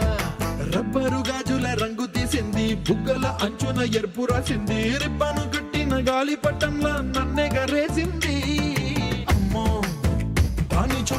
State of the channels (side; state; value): both; identical; correlation 1.00